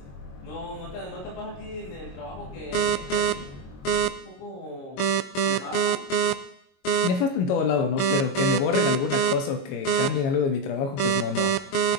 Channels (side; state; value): right; late; 22 ms